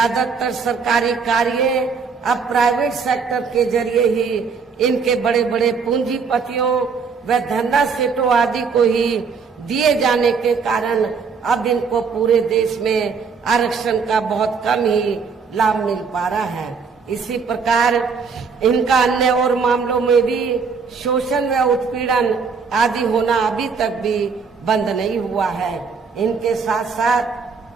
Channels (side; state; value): left; quieter; 5.4 dB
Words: सरकारी कार्य अब प्राइवेट सेक्टर के जरिए ही इनके बड़े बड़े पूंजीपतियों व धंधा सेठों आदि को ही दिए जाने के कारण अब इनको पूरे देश में आरक्षण का बहुत कम ही लाभ मिल पा रहा है। इसी प्रकार इनका अन्य और मामलों में भी शोषण व उत्पीड़न आदि होना अभी तक भी बंद नहीं हुआ है। इनके साथ